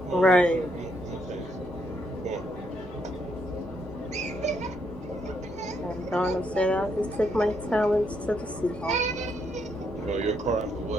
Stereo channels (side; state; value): both; normal; correlation 0.75